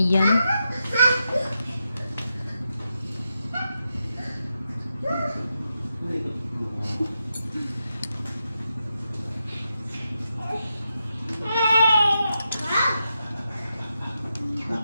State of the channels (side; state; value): both; inverted; correlation -0.87